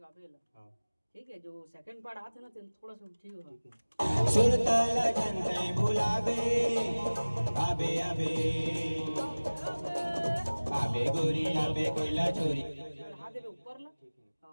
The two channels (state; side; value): inverted; both; correlation -1.00